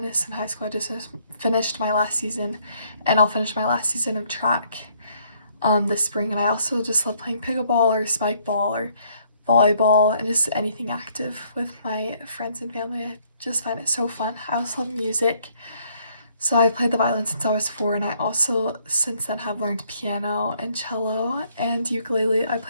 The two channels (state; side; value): inverted; both; correlation -0.66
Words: in high school. I just finished my last season, and I'll finish my last season of track this spring. And I also just love playing pickleball or spike ball or volleyball and just anything active with my friends and family. I just find it so fun. I also love music. So I played the violin since I was 4, and I also since then have learned piano and cello and ukulele. I